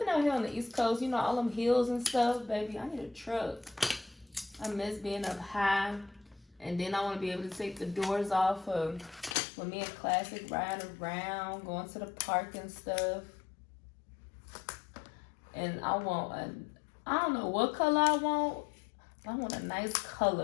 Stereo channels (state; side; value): drops out; right; at 9.3 s